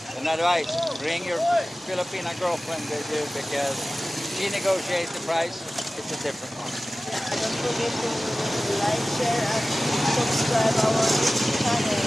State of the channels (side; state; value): both; normal; correlation 0.96